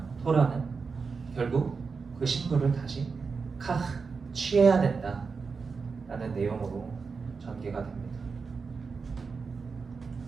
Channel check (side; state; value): left; quieter; 5.0 dB